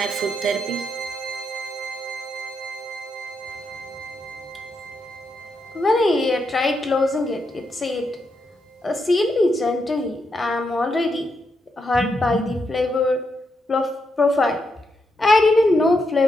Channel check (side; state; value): both; normal; correlation 0.82